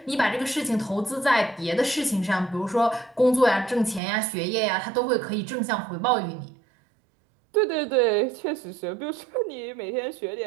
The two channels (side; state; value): left; drops out; at 4.0 s